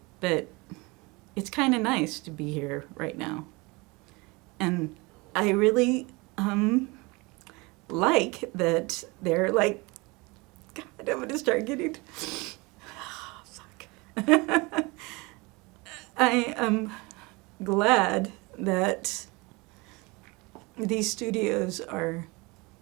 But it's kind of nice to be here right now. And I really like that they're like, God, I'm going to start getting, fuck. I am glad that these studios are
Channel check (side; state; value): left; quieter; 25.5 dB